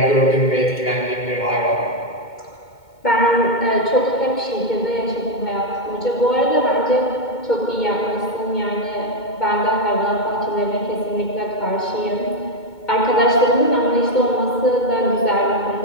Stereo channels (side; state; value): right; late; 2.2 ms